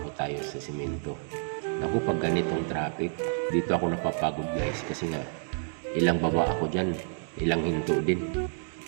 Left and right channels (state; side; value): silent; left; 58 dB below the other